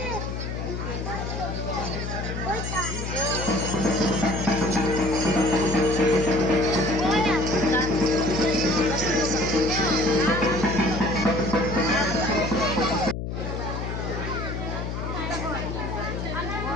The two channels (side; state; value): left; noise; hum, 4 dB below the sound